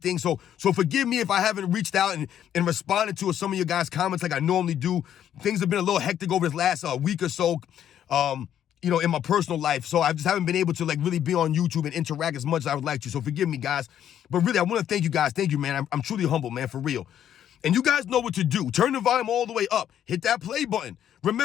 So forgive me if I haven't reached out and responded to some of you guys' comments like I normally do. Things have been a little hectic over this last week or so, in my personal life. So I just haven't been able to like really be on YouTube and interact as much as I would like to. So forgive me, guys. But really, I want to thank you guys. Thank you, man. I'm truly humble, man, for real. And you guys know what to do. Turn the volume all the way up. Hit that play button.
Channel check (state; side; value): quieter; right; 10.3 dB